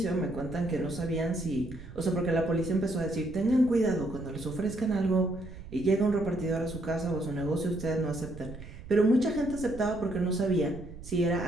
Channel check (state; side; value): noise; right; rumble, 14 dB below the sound